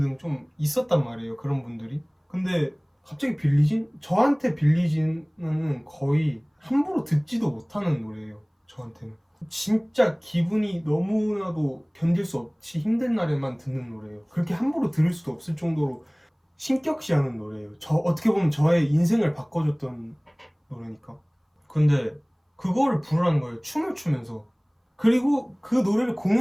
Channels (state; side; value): identical; both; correlation 1.00